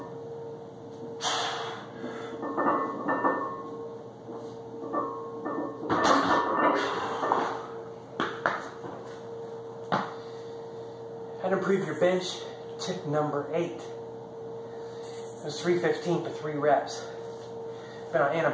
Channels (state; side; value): identical; both; correlation 1.00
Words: How to improve your bench, tip number 8. It was 315 for 3 reps. Been on